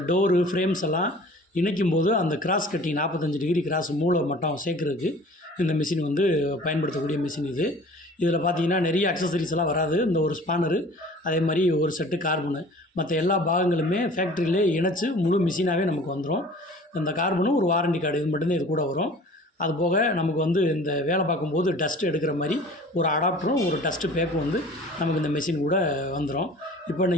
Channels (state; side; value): normal; both; correlation 0.46